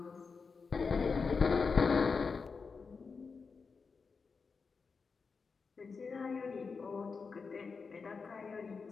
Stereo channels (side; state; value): right; quieter; 5.0 dB